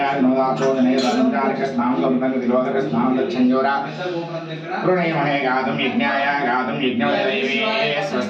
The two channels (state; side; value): identical; both; correlation 1.00